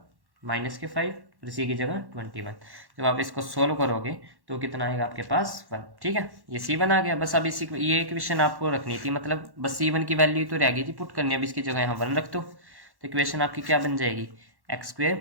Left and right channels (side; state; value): left; late; 1.1 ms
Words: -5 और सी की जगह 21। जब आप इसको सोल्व करोगे तो कितना आएगा आपके पास 1। ठीक है, ये C1 आ गया। बस अब इसी ये इक्वेशन आपको रखनी थी, मतलब बस C1 की वैल्यू तो रह गई थी पुट करनी। अब इसकी जगह यहाँ 1 रख दो तो इक्वेशन आपकी क्या बन जाएगी, x²